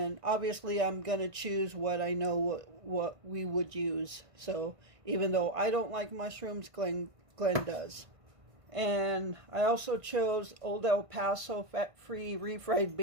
obviously I'm gonna choose what I know what we would use. So even though I don't like mushrooms, Glenn does. And I also chose Old El Paso fat-free refried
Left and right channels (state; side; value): late; left; 1.5 ms